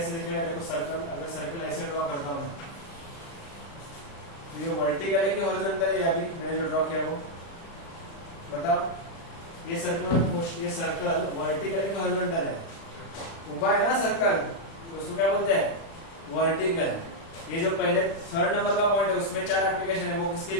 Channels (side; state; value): right; late; 36 ms